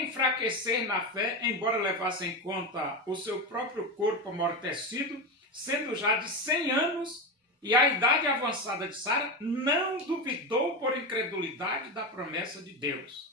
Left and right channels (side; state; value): both; normal; correlation 0.17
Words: enfraquecer na fé, embora levasse em conta o seu próprio corpo amortecido, sendo já de 100 anos, e a idade avançada de Sara, não duvidou por incredulidade da promessa de